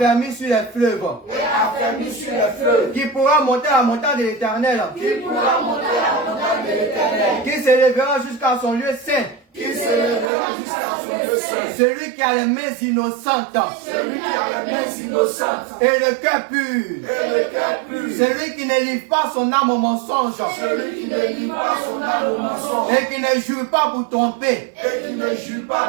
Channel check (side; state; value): left; drops out; at 10.3 s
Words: sur les fleuves. Et affermi sur les fleuves. Qui pourra monter à la montagne de l'Éternel. Qui pourra monter à la montagne de l'Éternel. Qui s'élèvera jusqu'à son lieu saint. Qui se lèvera jusqu'à son lieu saint. Celui qui a les mains innocentes. Celui qui a les mains innocentes. Et le cœur pur. Et le cœur pur. Celui qui ne livre pas son âme au mensonge. Celui qui ne livre pas son âme au mensonge. Et qui ne jure pas pour tromper. Et qui ne jure